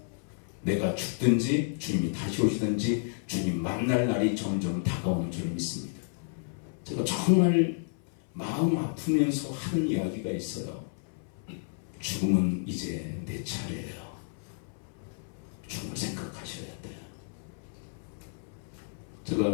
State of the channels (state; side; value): silent; right; 57 dB below the other